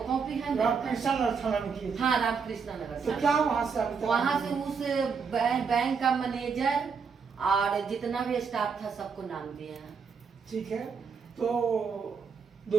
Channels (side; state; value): left; quieter; 5.7 dB